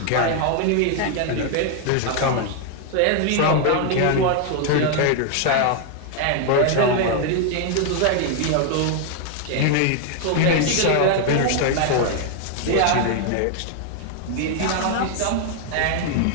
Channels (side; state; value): both; different; correlation 0.00